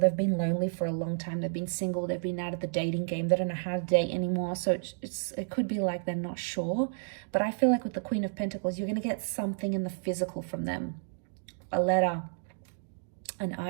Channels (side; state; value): left; silent; digital silence